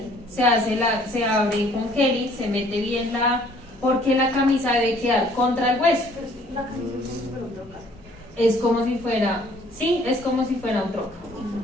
se abre con gel, se mete bien porque la camisa debe quedar contra el hueso. Pero es que la camisa es como si fuera un troca. Es como si fuera, sí, es como si fuera un troca.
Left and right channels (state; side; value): normal; both; correlation 0.59